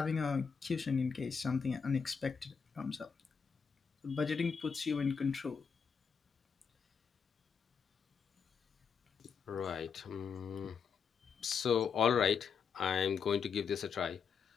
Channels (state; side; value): quieter; right; 6.2 dB